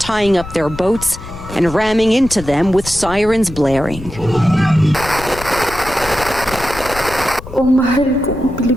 up their boats and ramming into them with sirens blaring. O mahal kong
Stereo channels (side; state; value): left; noise; rumble, 13 dB below the sound